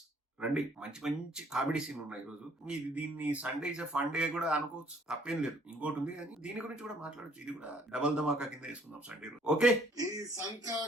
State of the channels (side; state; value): both; normal; correlation 0.61